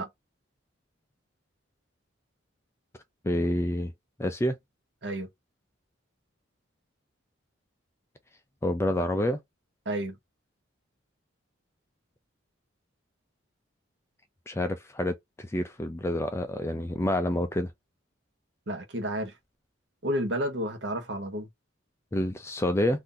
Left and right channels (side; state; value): both; normal; correlation 0.67